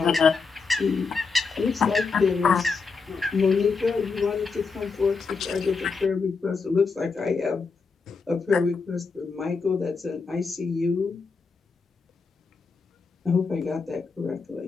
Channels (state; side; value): quieter; right; 4.7 dB